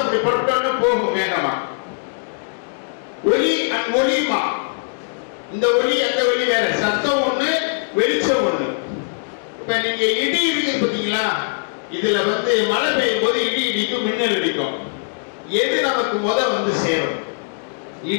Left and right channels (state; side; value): silent; right; digital silence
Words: அப்படி பட்டு போகும் வேகமா. ஒளி ஒளிமா, இந்த ஒளி அந்த ஒளி வேற, சத்தம் ஒண்ணு வெளிச்சம் ஒண்ணு. இப்ப நீங்க இடி இடிக்கு பாத்தீங்களா, இதுல மழை பெய்யும் போது இடி இடிக்கும், மின்னல் அடிக்கும். எது நமக்கு வந்து சேரும்,